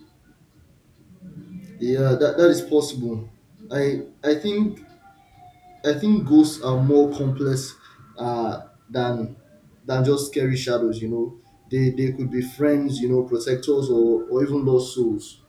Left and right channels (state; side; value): identical; both; correlation 1.00